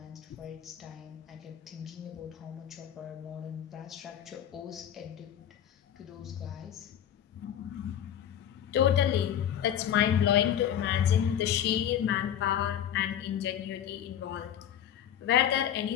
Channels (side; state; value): right; quieter; 10.1 dB